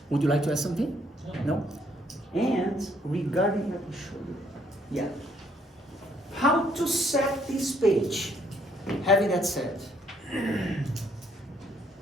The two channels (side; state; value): both; normal; correlation 0.67